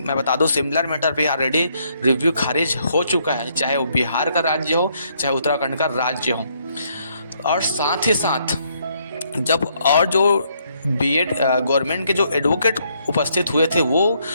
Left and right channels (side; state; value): both; inverted; correlation -0.72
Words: मैं बता दूं, सिमिलर मैटर पे ऑलरेडी रिव्यू खारिज हो चुका है, चाहे वो बिहार का राज्य हो चाहे उत्तराखंड का राज्य हो। और साथ ही साथ जब और जो बीएड गवर्नमेंट के जो एडवोकेट उपस्थित हुए थे वो